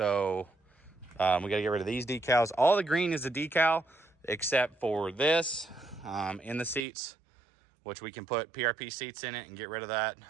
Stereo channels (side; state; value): left; drops out; at 6.9 s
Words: we got to get rid of these decals. All the green is a decal except for this in the seats, which we can put PRP seats in it and get rid of that.